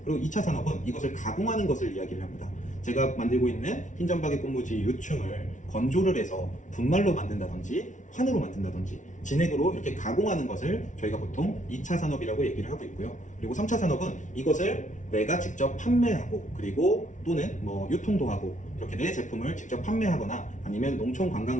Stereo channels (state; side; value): late; right; 0.37 ms